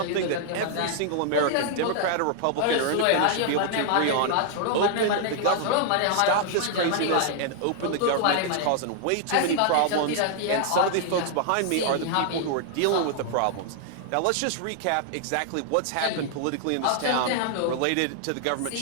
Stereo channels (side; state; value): both; different; correlation 0.00